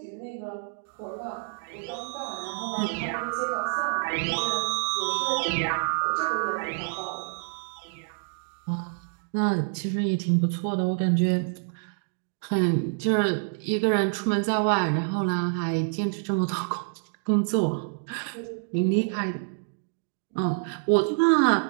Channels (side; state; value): left; silent; 60 dB below the other